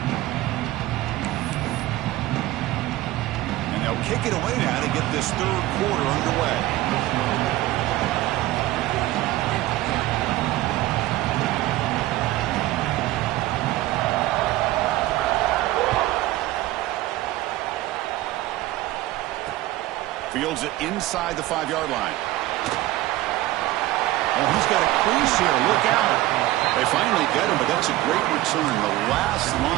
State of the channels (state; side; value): quieter; left; 16.7 dB